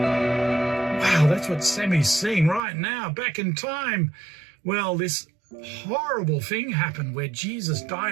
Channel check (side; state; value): left; drops out; at 2.6 s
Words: Wow, that's what Sammy's seeing right now, back in time. Well, this horrible thing happened where Jesus